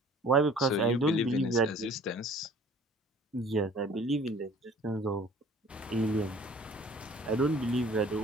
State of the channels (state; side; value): normal; both; correlation 0.51